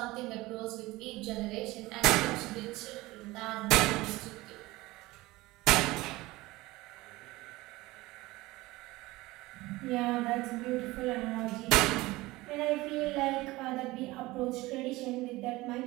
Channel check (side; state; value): left; quieter; 19.9 dB